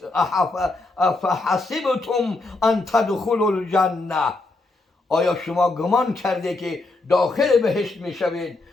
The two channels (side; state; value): right; quieter; 3.2 dB